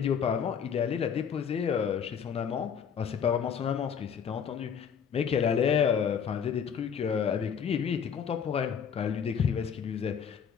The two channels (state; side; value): quieter; right; 7.4 dB